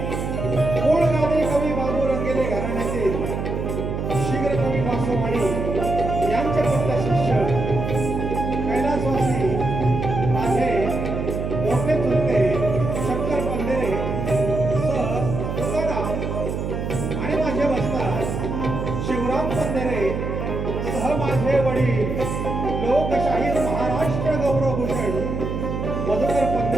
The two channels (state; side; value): noise; right; hum, 3 dB below the sound